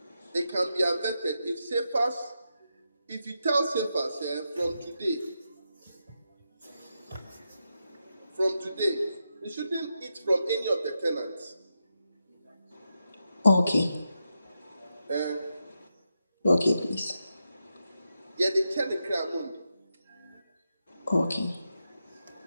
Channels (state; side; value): inverted; both; correlation -0.86